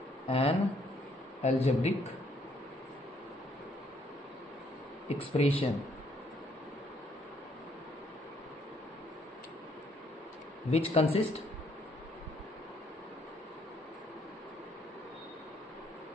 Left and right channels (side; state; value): both; normal; correlation 0.68